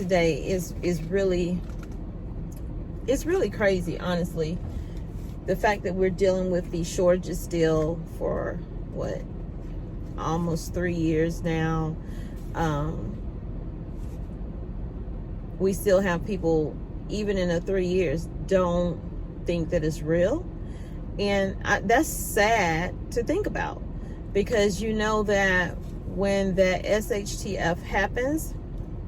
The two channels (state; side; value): identical; both; correlation 1.00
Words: is really crazy, honestly. The fact that we're dealing with these shortages still for what, almost 3 years now. We still have people, even in the 3 years, don't think that it's real. And that's sad to think about, because you know that when that SHTF happens,